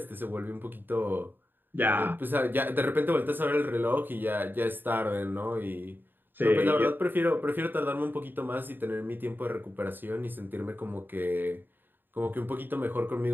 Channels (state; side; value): late; left; 0.094 ms